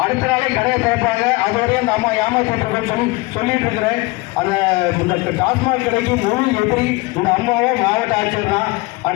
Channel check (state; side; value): quieter; right; 22.8 dB